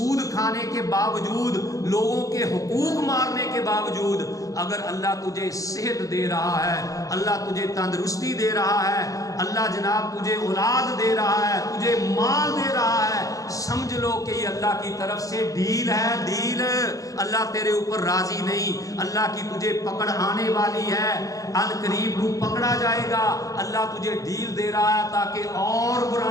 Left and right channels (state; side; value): late; right; 0.17 ms